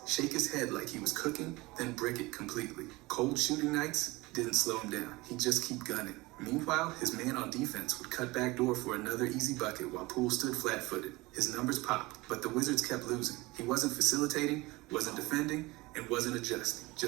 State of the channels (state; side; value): quieter; left; 22.0 dB